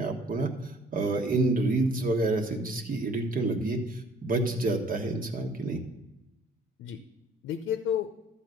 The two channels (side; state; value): both; normal; correlation 0.56